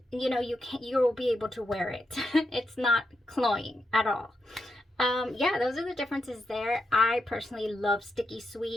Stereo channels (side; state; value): both; normal; correlation 0.83